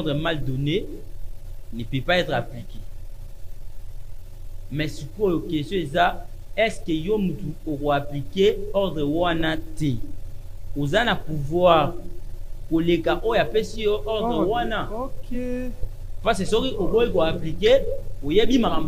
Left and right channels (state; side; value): identical; both; correlation 1.00